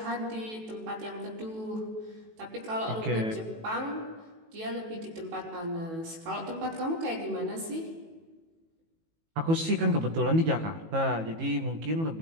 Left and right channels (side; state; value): left; late; 18 ms